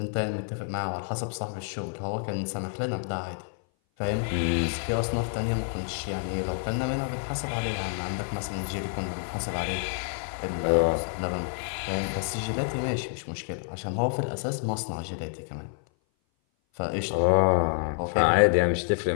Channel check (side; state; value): right; silent; 57 dB below the other